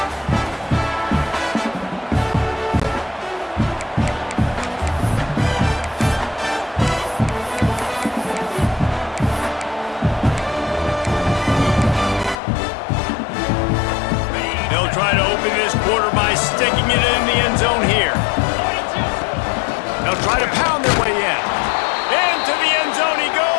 Try to open this quarter by sticking it in the end zone here. They'll try to pound their way in. Into the end zone he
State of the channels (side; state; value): right; drops out; at 12.4 s